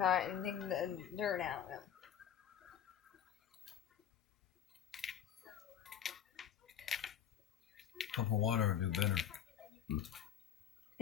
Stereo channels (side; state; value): right; quieter; 9.7 dB